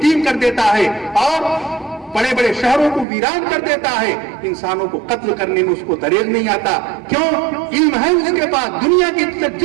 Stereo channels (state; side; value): drops out; left; at 3.1 s